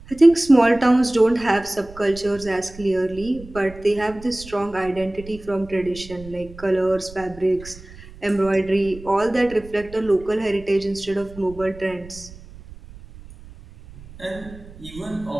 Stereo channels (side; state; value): right; noise; rumble, 18 dB below the sound